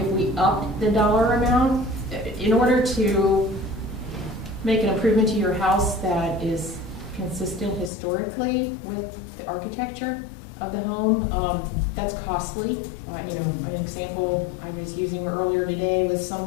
we upped the dollar amount, in order to make an improvement to your house that is consistent historically with the architecture of the home, that's costly. An example I was using earlier today was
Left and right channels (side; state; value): right; drops out; at 7.9 s